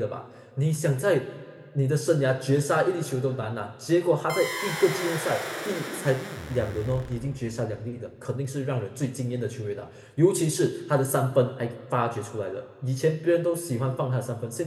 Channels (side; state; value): both; identical; correlation 1.00